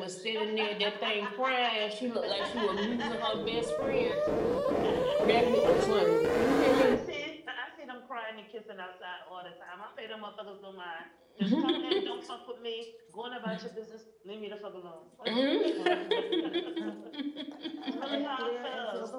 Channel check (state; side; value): identical; both; correlation 1.00